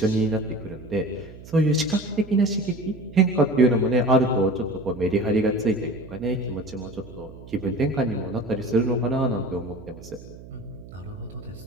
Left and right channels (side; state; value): right; noise; hum, 17 dB below the sound